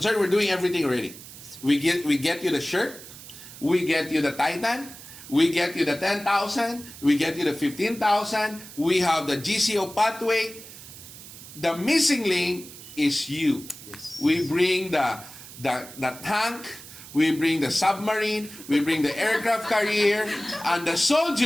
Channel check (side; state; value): right; noise; hiss, 16 dB below the sound